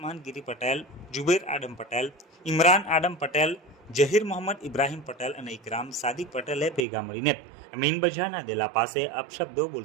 ગીરી પટેલ, જુબેર આડમ પટેલ, ઇમરાન આડમ પટેલ, જહીર મોહમ્મદ ઇબ્રાહિમ પટેલ અને ઇકરામ સાદિક પટેલે ભેગા મળીને મીન બજારના દેલા પાસે અપશબ્દો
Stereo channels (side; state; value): left; drops out; at 6.9 s